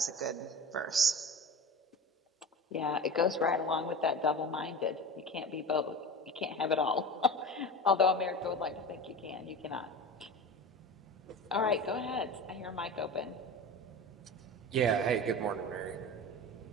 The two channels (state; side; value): normal; both; correlation 0.31